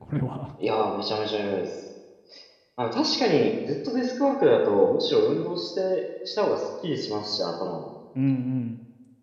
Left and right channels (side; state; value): both; identical; correlation 1.00